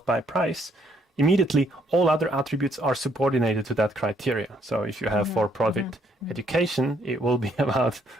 by price, immediately all other attributes are subordinated to that criteria. So if you have for-profit education, it will be about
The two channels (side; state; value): both; normal; correlation 0.69